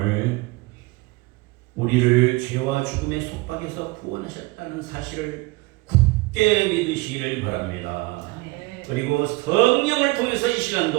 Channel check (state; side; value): quieter; left; 23.3 dB